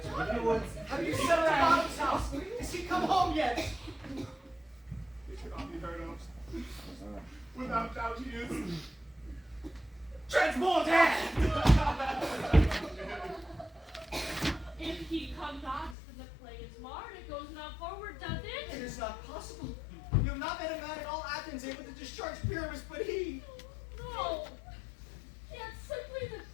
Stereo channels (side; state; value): right; drops out; at 16.0 s